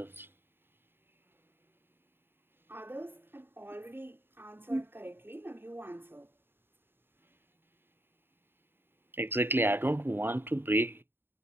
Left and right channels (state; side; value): late; left; 0.10 ms